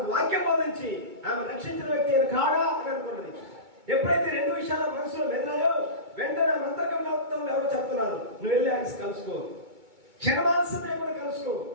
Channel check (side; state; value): left; late; 2.2 ms